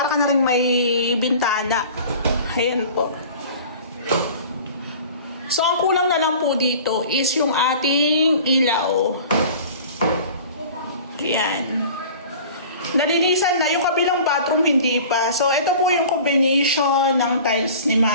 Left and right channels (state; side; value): inverted; both; correlation -0.43